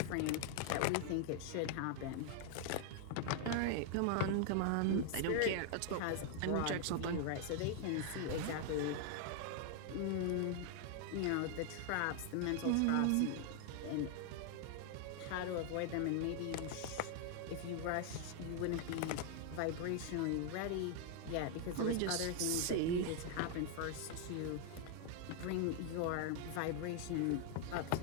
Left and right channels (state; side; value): different; both; correlation 0.00